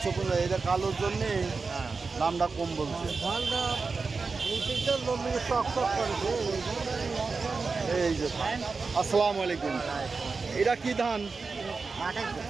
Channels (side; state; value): left; quieter; 4.4 dB